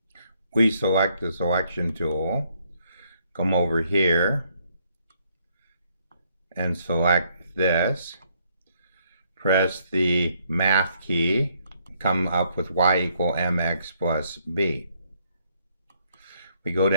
We select the selection tool, come over here, and select this, press the math key, come up with y equal mx plus b. We go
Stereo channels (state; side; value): inverted; both; correlation -0.70